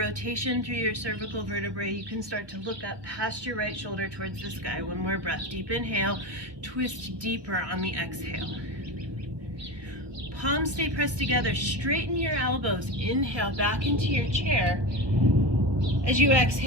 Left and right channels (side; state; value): left; late; 1.2 ms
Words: through your cervical vertebrae, you can start to look up past your right shoulder towards the sky. One more breath. Deep inhale, twist deeper on the exhale. Palms stay pressed together. Straighten your elbows. Inhale back into your chair. As you